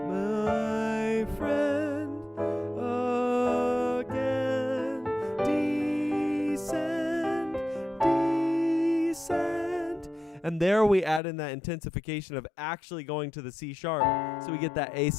my friend, again. Descend. And there we add in that intensification of actually going to the C sharp, so we get that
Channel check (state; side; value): drops out; right; at 11.2 s